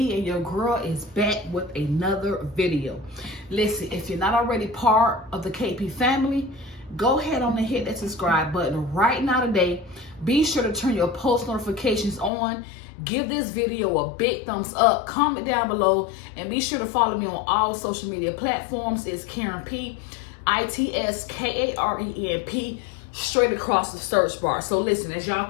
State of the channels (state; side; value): drops out; right; at 12.3 s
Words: and your girl is back with another video. Listen, if you're not already part of the KP family, go ahead on and hit that subscribe button right now today. Be sure to turn your post notifications on. Give this video a big thumbs up. Comment down below, and be sure to follow me on all social media platforms. It's Karen P, ITSKARENP, straight across the search bar. So listen, as y'all